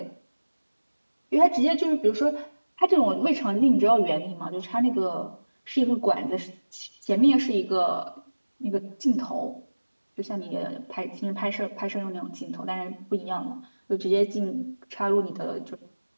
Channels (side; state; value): both; inverted; correlation -1.00